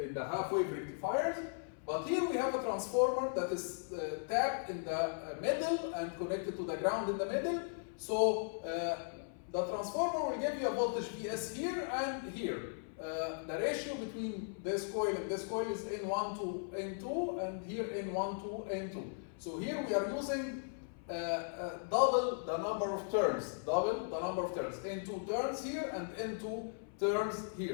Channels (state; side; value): silent; right; 53 dB below the other